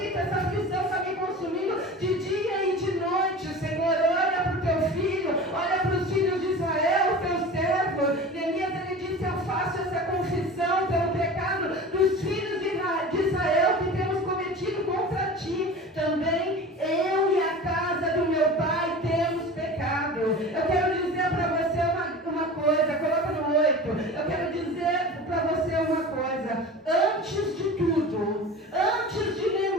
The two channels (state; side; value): normal; both; correlation 0.35